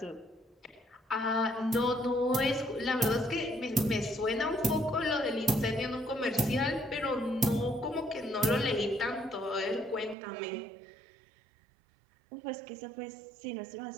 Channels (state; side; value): drops out; left; at 10.2 s